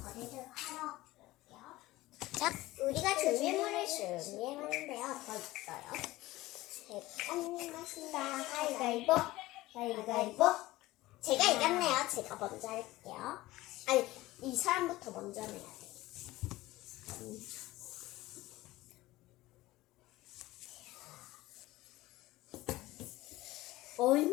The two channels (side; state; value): right; quieter; 18.0 dB